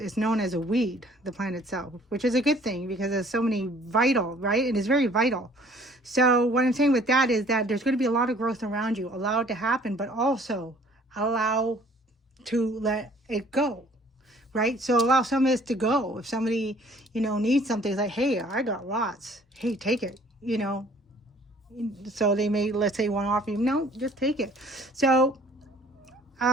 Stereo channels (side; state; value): both; normal; correlation 0.55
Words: known as a weed, the plant itself, which is a good thing because there's so many vital, right? It is very vital. So what I'm saying with that is that there's going to be a lot of growth around you. Allow it to happen, but also allow to let it go, right? So allow some of this to go. If somebody, you know, needs something, it's like, hey, I got lots. Hey, take it, you know. So they may, let's say, want to offer you, no, just take it. So,